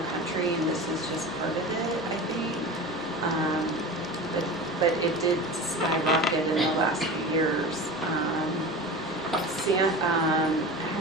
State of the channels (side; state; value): both; normal; correlation 0.31